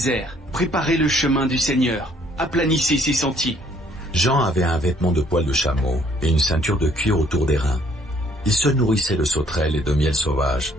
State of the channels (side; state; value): both; normal; correlation 0.63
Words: Préparez le chemin du Seigneur, aplanissez ses sentiers. Jean avait un vêtement de poil de chameau et une ceinture de cuir autour des reins. Il se nourrissait de sauterelles et de miel sauvage.